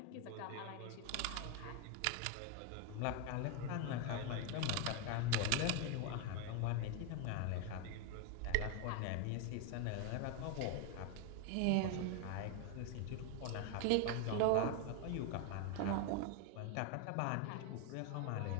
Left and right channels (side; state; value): both; different; correlation 0.01